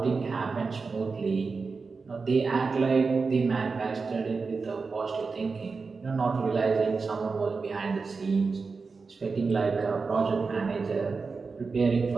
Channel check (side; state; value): left; quieter; 4.5 dB